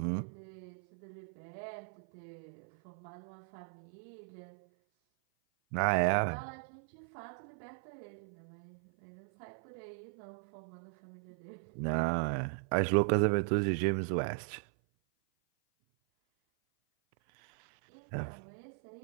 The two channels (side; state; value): left; silent; 53 dB below the other